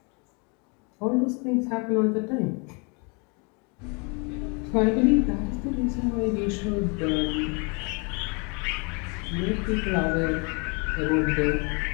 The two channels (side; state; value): right; quieter; 33.0 dB